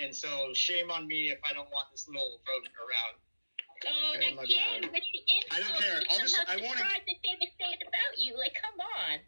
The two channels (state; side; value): inverted; both; correlation -1.00